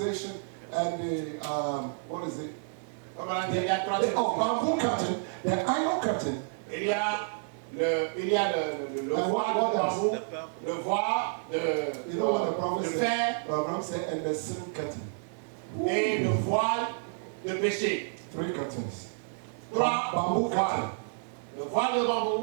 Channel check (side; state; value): left; silent; digital silence